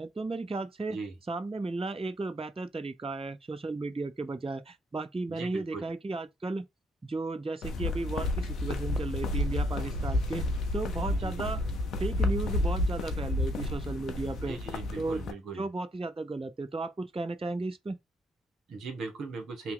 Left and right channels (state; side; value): normal; both; correlation 0.70